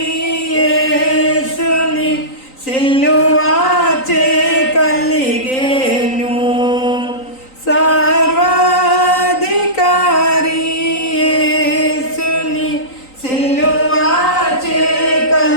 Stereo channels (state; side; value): late; right; 3.9 ms